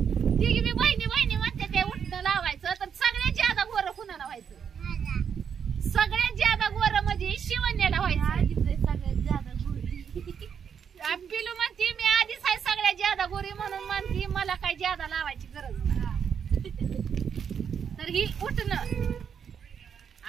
तिघी बी बहिणी म्हणते ते उठणं लावायचं. तर सगळ्यात ज्यादा गोरं कुणाला व्हायचं. सगळ्यात ज्यादा गोरं म्हणजे शिवण्याला व्हायचं. सगळ्यात ज्यादा पिलू म्हणते मी आधी ज्यादा गोरी म्हणून म्हणती मला काही ज्यादा लावायची गरज नाही. तर ही उठणं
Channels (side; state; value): left; quieter; 7.4 dB